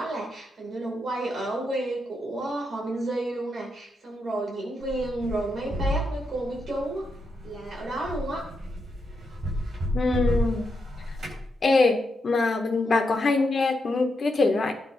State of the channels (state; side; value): normal; both; correlation 0.83